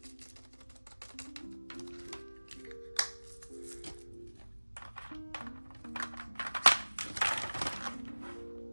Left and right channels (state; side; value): inverted; both; correlation -1.00